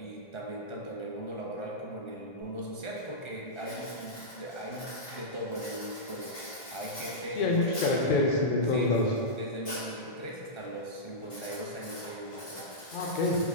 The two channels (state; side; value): late; right; 1.8 ms